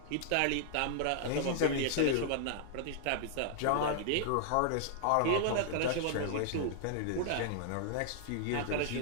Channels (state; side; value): different; both; correlation 0.00